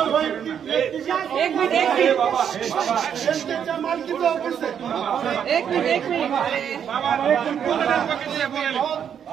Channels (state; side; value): quieter; left; 8.4 dB